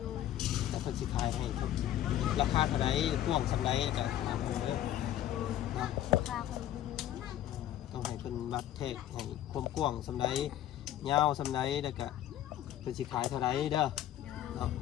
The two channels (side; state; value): right; quieter; 12.3 dB